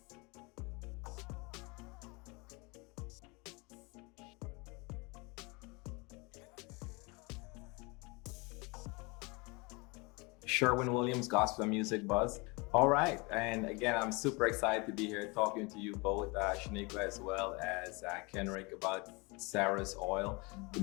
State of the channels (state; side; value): quieter; right; 27.8 dB